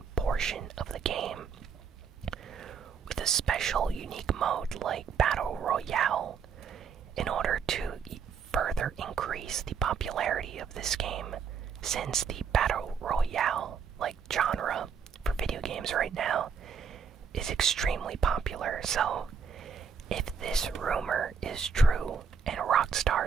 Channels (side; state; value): left; quieter; 6.3 dB